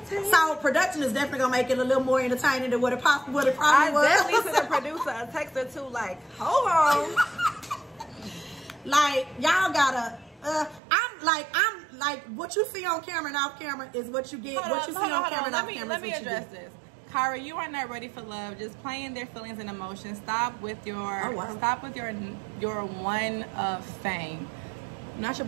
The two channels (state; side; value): drops out; left; at 10.8 s